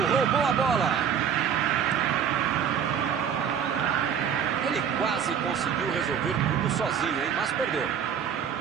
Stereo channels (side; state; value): left; quieter; 7.9 dB